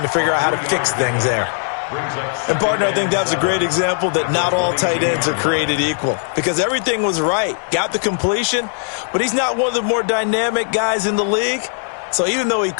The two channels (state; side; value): silent; right; 67 dB below the other